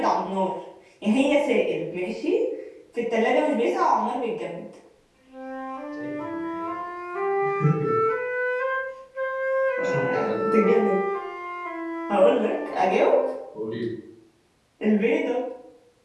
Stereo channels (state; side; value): identical; both; correlation 1.00